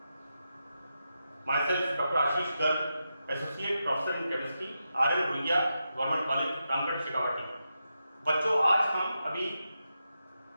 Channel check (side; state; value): both; inverted; correlation -0.88